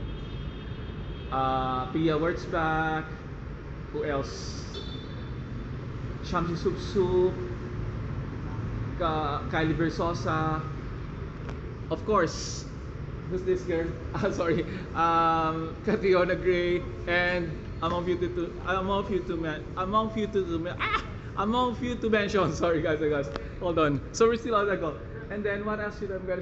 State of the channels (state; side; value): identical; both; correlation 1.00